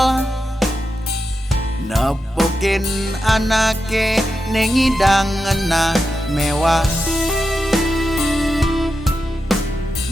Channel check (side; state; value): both; normal; correlation 0.89